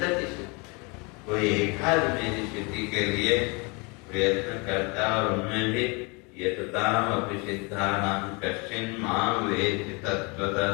कोई एकाध मेरी स्थिति के लिए प्रयत्न करता और उनमें भी यतताम अपि सिद्धानां कश्चिन माम वेत्ति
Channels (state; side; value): quieter; right; 29.7 dB